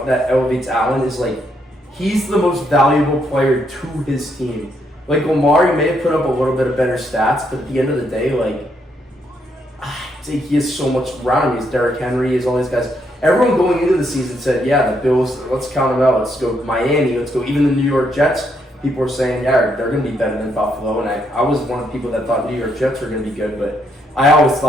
elevates Allen is like he's the most valuable player to his team. Like Lamar, he may have put up a little bit of better stats, but at the end of the day, like I think he has so much around him. He's Derrick Henry, he's all these guys. Everyone going into the season said, yeah, the Bills, let's count them out. Let's go Miami, let's go even the New York Jets. People were saying, yeah, they're going to be better than Buffalo. And I was one of the people that thought New York Jets were going to be good. But I always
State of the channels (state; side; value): normal; both; correlation 0.75